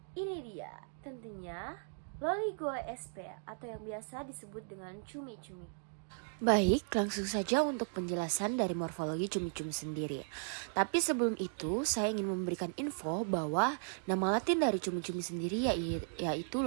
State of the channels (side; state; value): left; silent; digital silence